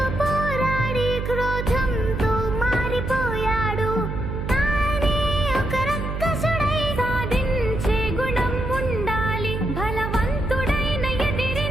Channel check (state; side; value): noise; right; hum, 4 dB below the sound